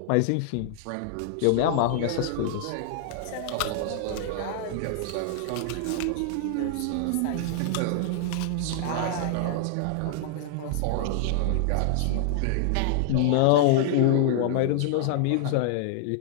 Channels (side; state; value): both; different; correlation -0.01